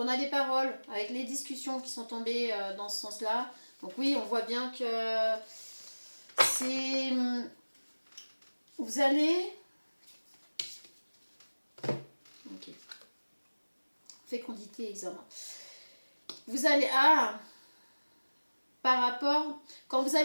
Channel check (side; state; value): both; inverted; correlation -1.00